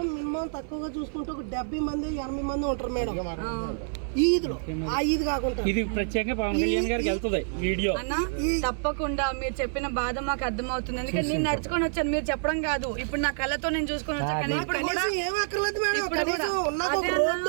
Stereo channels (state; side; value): silent; left; 56 dB below the other